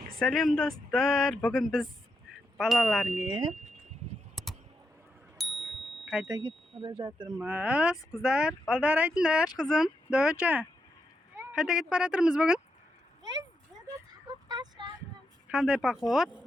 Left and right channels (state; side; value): normal; both; correlation 0.84